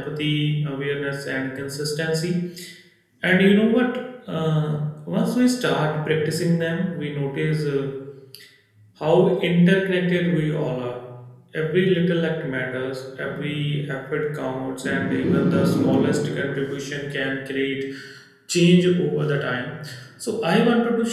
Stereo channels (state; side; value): identical; both; correlation 1.00